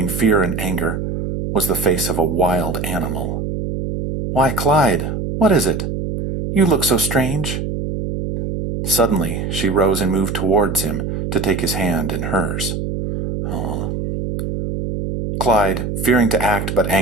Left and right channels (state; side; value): noise; right; hum, 3 dB below the sound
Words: fear and anger, was the face of a wild animal. "Why, Clyde, what is it? You look so strange." Suddenly, she rose and moved towards him to take his hand in hers. "Aw." Clyde, fearing to act but